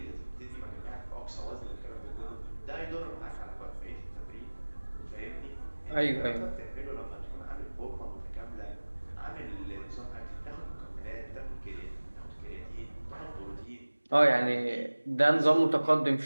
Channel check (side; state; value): both; inverted; correlation -1.00